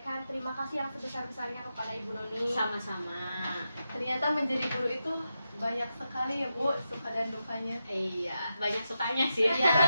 terima kasih yang sebesar-besarnya kepada Ibu Noni. Sama-sama. Ternyata menjadi guru itu banyak sekali ya Bu, suka dan dukanya. Iya, banyak sukanya sih. Iya.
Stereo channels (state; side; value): inverted; both; correlation -0.89